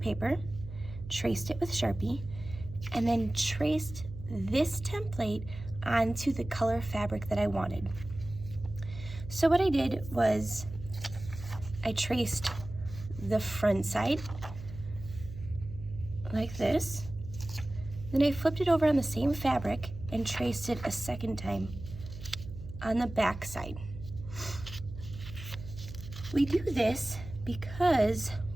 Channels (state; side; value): noise; right; hum, 12 dB below the sound